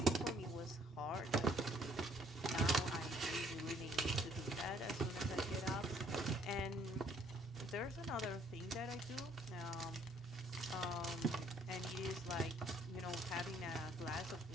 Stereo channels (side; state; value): both; normal; correlation 0.63